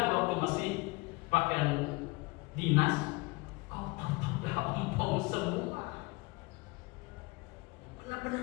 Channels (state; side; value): quieter; right; 25.4 dB